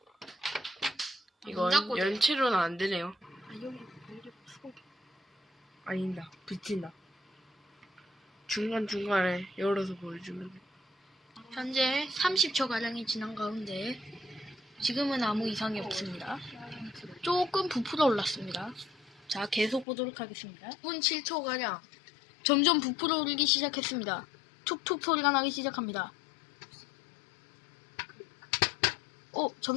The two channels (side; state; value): right; drops out; at 19.9 s